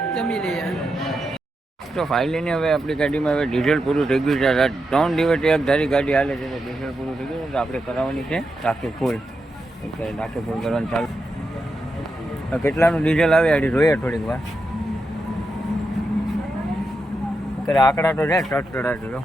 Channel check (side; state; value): both; normal; correlation 0.86